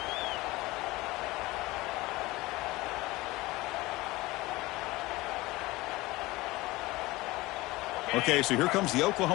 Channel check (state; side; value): quieter; right; 20.3 dB